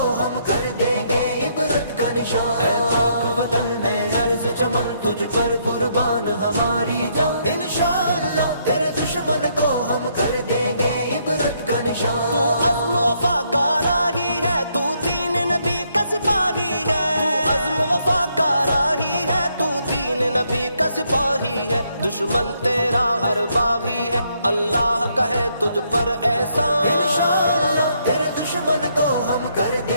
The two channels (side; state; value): both; inverted; correlation -0.73